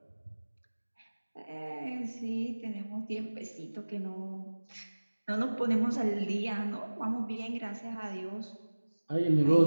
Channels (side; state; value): both; inverted; correlation -1.00